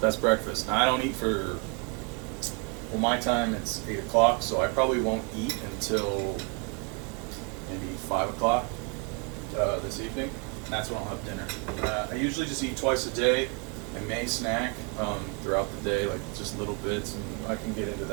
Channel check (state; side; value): quieter; left; 32.7 dB